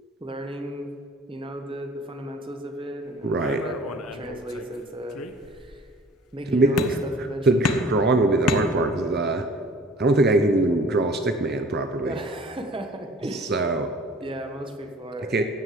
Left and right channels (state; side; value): normal; both; correlation 0.49